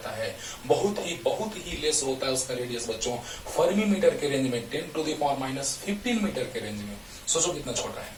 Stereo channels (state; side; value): identical; both; correlation 1.00